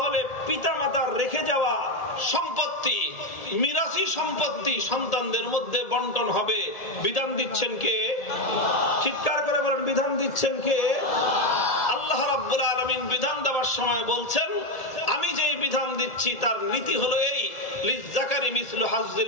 পিতামাতার রেখে যাওয়া সম্পত্তি, মিরাসি সম্পত্তি সন্তানদের মধ্যে বন্টন হবে। বিধান দিচ্ছেন কে? চিৎকার করে বলেন, বিধান দিচ্ছেন কে? আল্লাহ রাব্বুল আলামিন বিধান দেওয়ার সময় বলছেন, আমি যেই বিধান দিচ্ছি তার নীতি হলো এই, লিয-যাকারি মিসলু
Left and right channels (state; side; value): late; right; 1.8 ms